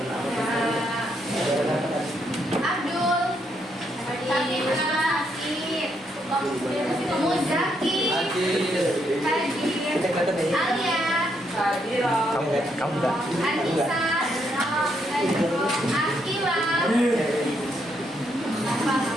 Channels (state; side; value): normal; both; correlation 0.76